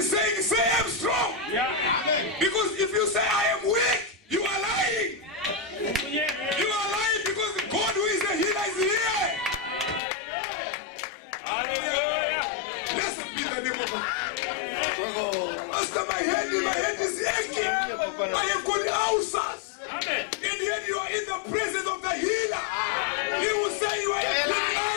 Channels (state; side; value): drops out; right; at 10.0 s